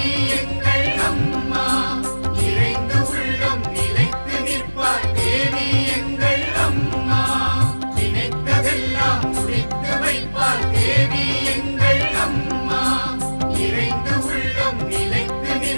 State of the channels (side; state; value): both; inverted; correlation -1.00